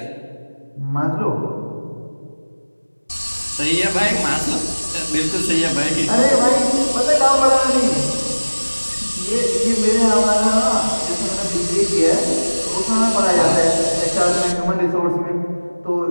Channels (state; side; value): inverted; both; correlation -1.00